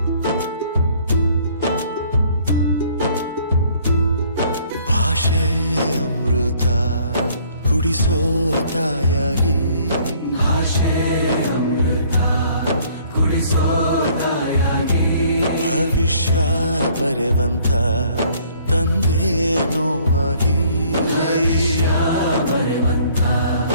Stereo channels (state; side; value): inverted; both; correlation -0.59